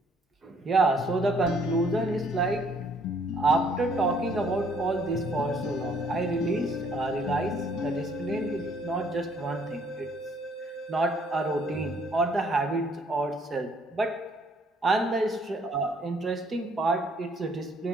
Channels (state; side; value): normal; both; correlation 0.63